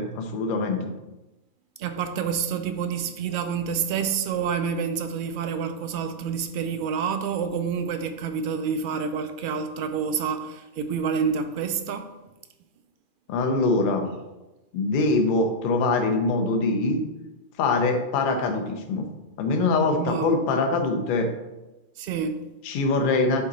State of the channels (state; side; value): late; right; 2.4 ms